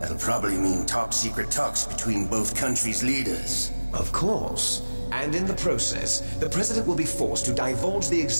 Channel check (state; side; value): inverted; both; correlation -1.00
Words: probably mean top-secret talks between both countries' leaders. Of course. And in the process, the president will be forced to divulge the